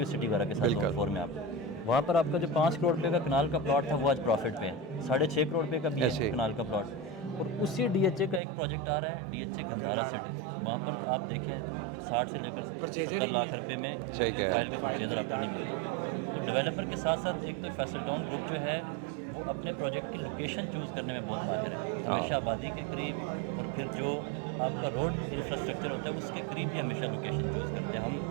سٹی وغیرہ کے ساتھ زون 4 میں. آپ وہاں پر آپ کا جو 5 کروڑ روپے کا کنال کا پلاٹ تھا وہ آج پروفٹ پہ ہے, 6.5 کروڑ روپے کا بھی ہے کنال کا پلاٹ. اور اسی ڈی ایچ اے کا ایک پروجیکٹ آ رہا ہے, D H A Gandhara city, وہاں پر آپ دیکھیں 60 سے لے کر 70 لاکھ روپے میں فائل کا پرچیزر آپ کو نہیں ملتا. تو ڈیولپر کے ساتھ ساتھ ایک تو فیصل ٹاؤن گروپ جو ہے وہ اپنے پروجیکٹ کی لوکیشن چوز کرنے میں بہت ماہر ہے, ہمیشہ آبادی کے قریب, اور پھر جو آپ کا روڈ انفراسٹرکچر ہوتا ہے اس کے قریب بھی ہمیشہ لوکیشن چوز کرتے ہیں. ہم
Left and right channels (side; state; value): left; drops out; at 8.4 s